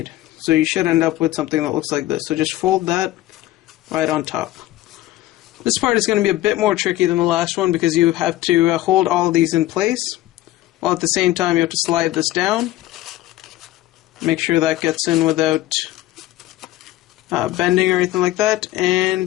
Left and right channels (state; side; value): quieter; right; 15.6 dB